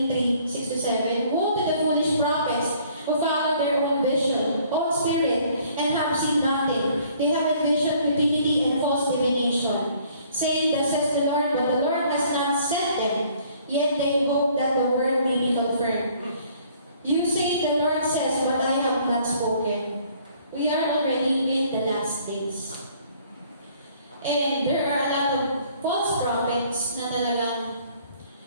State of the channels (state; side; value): inverted; both; correlation -0.59